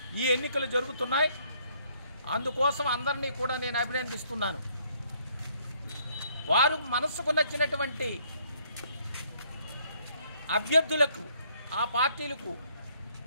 ఈ ఎన్నికలు జరుగుతున్నాయి. అందుకోసం అందరినీ కూడా నేను అభినందిస్తున్నాను. వారు మనసుకు నచ్చినటువంటి అభ్యర్థులకు, ఆ పార్టీలకు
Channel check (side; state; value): both; inverted; correlation -0.67